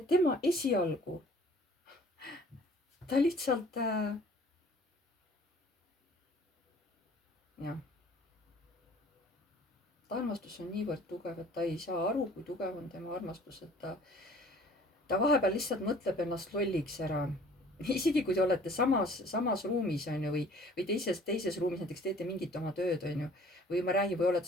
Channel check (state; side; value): normal; both; correlation 0.52